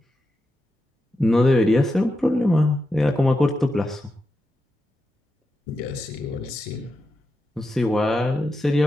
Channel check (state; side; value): normal; both; correlation 0.88